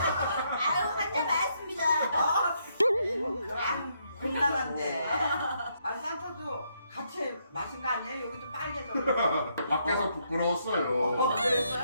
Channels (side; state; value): both; inverted; correlation -0.75